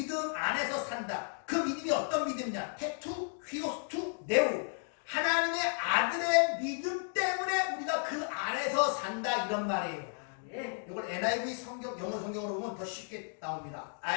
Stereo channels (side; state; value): right; silent; 55 dB below the other